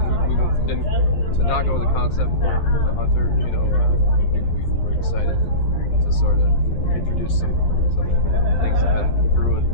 we didn't to not go with the concept for the Hunter. We were excited to sort of introduce some things that have been brewing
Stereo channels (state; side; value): late; right; 12 ms